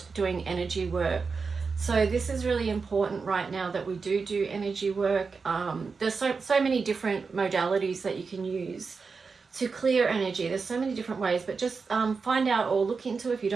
doing energy work. So this is really important right now that we do energy work. There's so many different modalities that you can use to clear energy. There's so many different ways, but just find out or look into, if you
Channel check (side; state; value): left; quieter; 4.9 dB